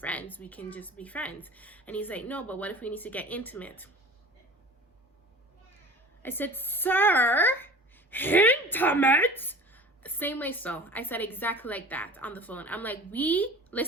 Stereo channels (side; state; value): both; normal; correlation 0.40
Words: We can just be friends. And he's like, no, but what if we need to get intimate? I said, sir, intimate? Same way. So I said exactly like that on the phone. I'm like, we,